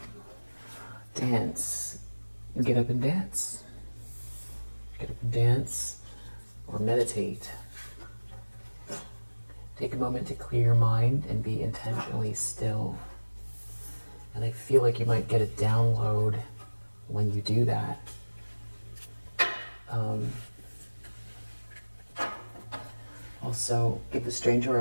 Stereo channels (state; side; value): inverted; both; correlation -1.00